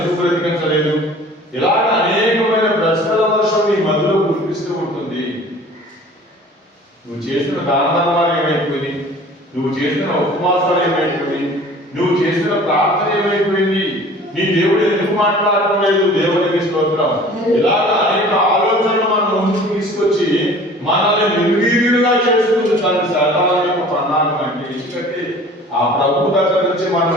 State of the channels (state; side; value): normal; both; correlation 0.46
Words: బ్రతికించలేదు? ఇలాగ అనేకమైన ప్రశ్నల వర్షం నీ మధ్యలో కురిపిస్తూ ఉంటుంది. నువ్వు చేసిన దాన ధర్మాలు ఏమైపోయింది? నువ్వు చేసిన ఉపవాసాలు ఏమైపోయింది? నువ్వు చేసిన ప్రార్థన ఏమైపోయింది? నీ దేవుడు ఎందుకు మాట్లాడటం లేదు? దేవునికి స్తోత్రం. ఇలాగ అనేక ఆలోచనలు మనం ముందుకు తీసుకొచ్చి మనల్ని నిర్వీర్యులుగా చేసుకుంది తన శాతాల యొక్క ప్రణాళిక. అంటే ఎందుకంటే ఆ ప్రభు దగ్గర నుంచి